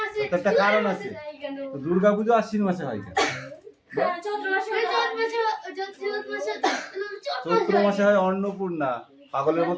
একটা কারণ আছে। দুর্গা পুজো আশ্বিন মাসে হয় কেন? চৈত্র মাসে হয় অন্নপূর্ণা। পাগলের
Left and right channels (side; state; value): both; identical; correlation 1.00